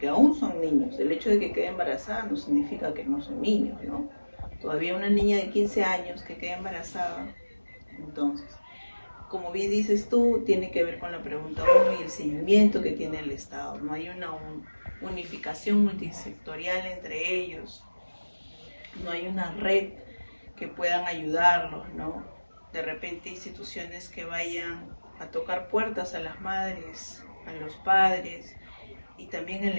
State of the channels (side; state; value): both; inverted; correlation -1.00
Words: aún son niños. El hecho de que quede embarazada no significa que no son niños, ¿no? Todavía una niña de 15 años que quede embarazada. Entonces, como bien dices tú, tiene que ver con la pregunta 1 y el seguimiento que tiene el Estado. No hay una unificación multisectorial entre ellos, no hay una red que puedan ayudarlos, ¿no? De repente instituciones que vayan a tocar puertas a las madres, a los padres, y también el